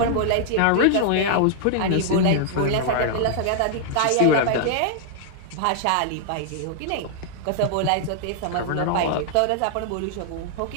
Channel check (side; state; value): both; different; correlation -0.01